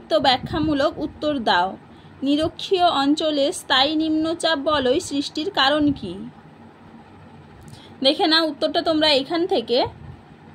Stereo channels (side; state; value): both; identical; correlation 1.00